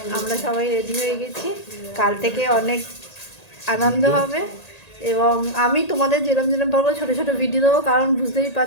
আমরা সবাই রেডি হয়ে গেছি। কাল থেকে অনেক আনন্দ হবে এবং আমি তোমাদের যেরম যেরম পারবো ছোটো ছোটো ভিডিও দেবো, কারণ বুঝতেই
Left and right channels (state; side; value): late; right; 1.8 ms